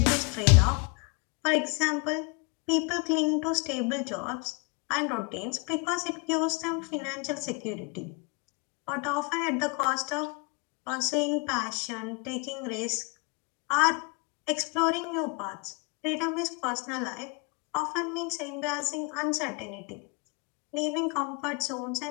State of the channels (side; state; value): right; quieter; 29.8 dB